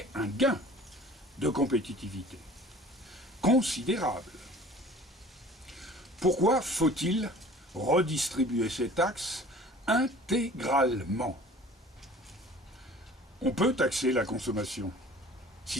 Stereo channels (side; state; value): both; normal; correlation 0.47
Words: un gain de compétitivité considérable. Pourquoi faut-il redistribuer ces taxes intégralement? On peut taxer la consommation,